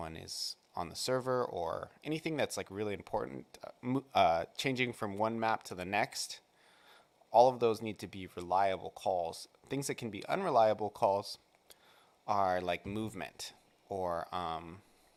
is on the server, or anything that's like really important, changing from one map to the next, all of those need to be reliable calls. Things that can be unreliable calls are like movement, or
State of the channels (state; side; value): identical; both; correlation 1.00